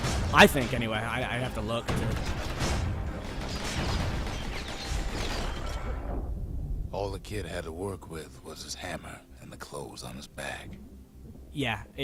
I think, anyway. I have to look to... All the kid had to work with was his hammer and the clothes on his back. Yeah,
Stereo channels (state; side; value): identical; both; correlation 1.00